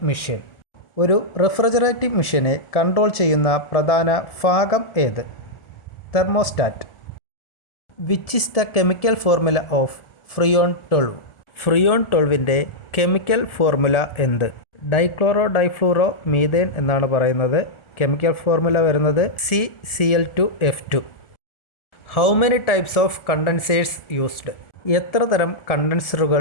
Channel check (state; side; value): late; right; 1.4 ms